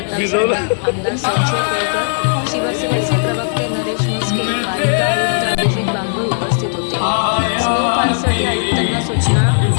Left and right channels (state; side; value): silent; right; digital silence